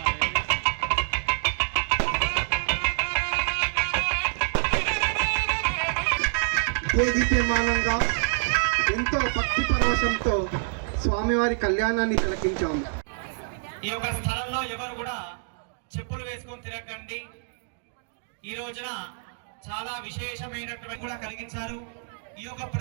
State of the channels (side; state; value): left; silent; digital silence